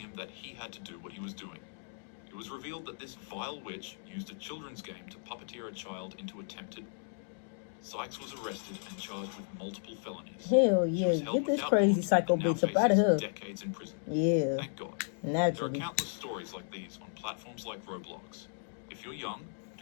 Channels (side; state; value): right; silent; digital silence